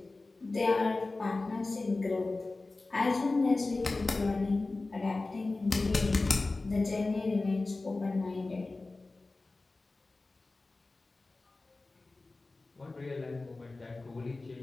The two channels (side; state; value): right; quieter; 3.3 dB